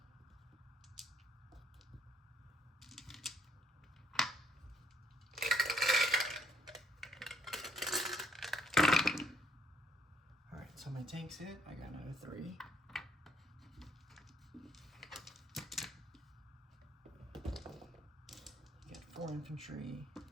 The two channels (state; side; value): normal; both; correlation 0.70